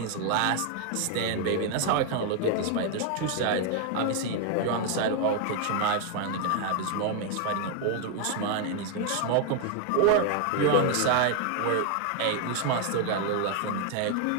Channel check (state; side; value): different; both; correlation 0.00